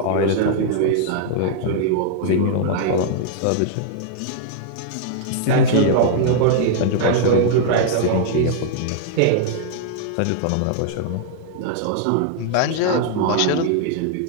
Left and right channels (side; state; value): both; different; correlation -0.01